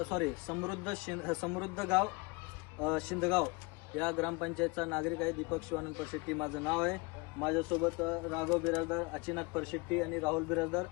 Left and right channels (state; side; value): quieter; right; 26.9 dB